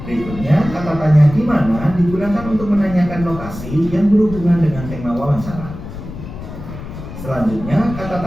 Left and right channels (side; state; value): left; noise; rumble, 11 dB below the sound